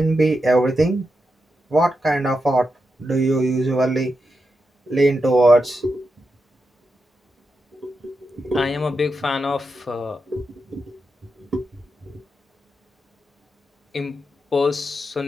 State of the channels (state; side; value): normal; both; correlation 0.87